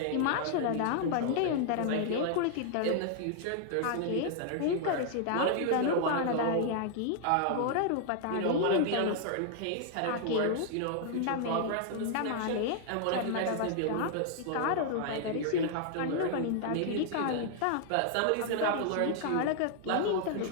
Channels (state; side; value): different; both; correlation 0.00